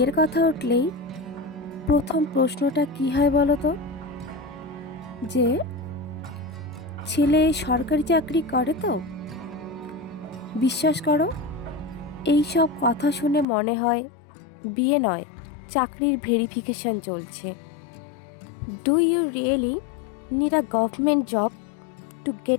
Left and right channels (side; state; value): right; drops out; at 13.5 s